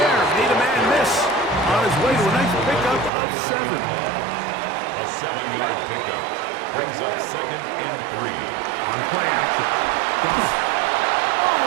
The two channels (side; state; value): left; drops out; at 3.1 s